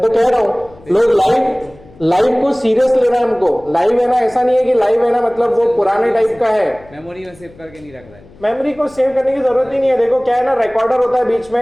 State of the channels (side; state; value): left; noise; hum, 24 dB below the sound